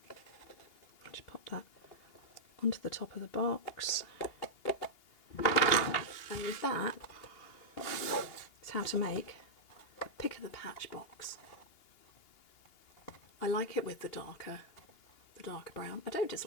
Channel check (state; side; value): late; right; 2.8 ms